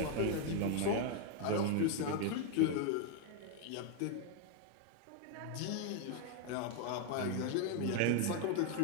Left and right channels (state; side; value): different; both; correlation 0.01